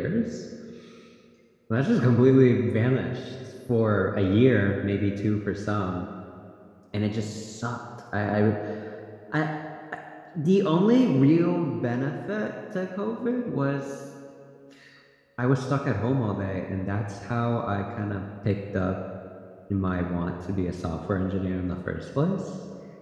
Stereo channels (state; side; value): identical; both; correlation 1.00